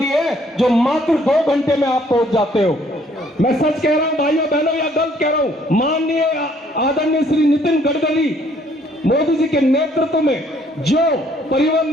जो मात्र 2 घंटे में आप पहुंच जाते हो। मैं सच कह रहा हूं भाइयों बहनों या गलत कह रहा हूं? माननीय आदरणीय श्री नितिन गडकरी मोदी जी के नेतृत्व में जो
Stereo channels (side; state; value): both; normal; correlation 0.63